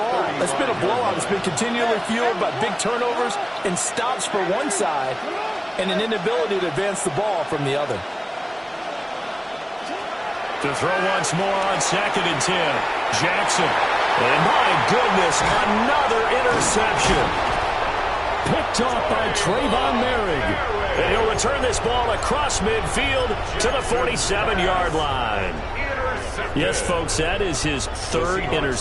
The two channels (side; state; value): both; identical; correlation 1.00